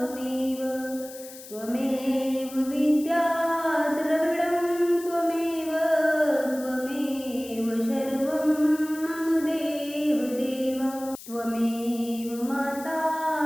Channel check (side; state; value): left; noise; hiss, 16 dB below the sound